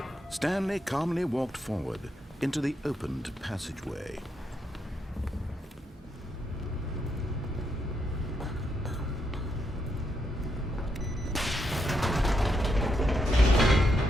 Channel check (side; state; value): both; normal; correlation 0.80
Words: Stanley calmly walked forward into the opened passageway.